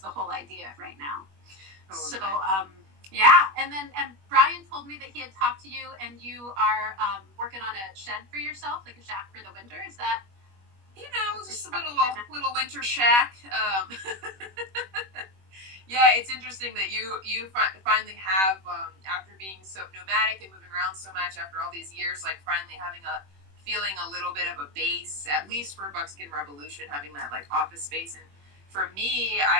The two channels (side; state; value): left; late; 21 ms